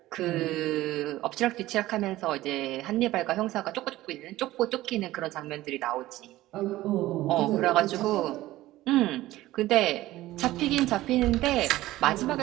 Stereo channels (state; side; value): quieter; left; 16.4 dB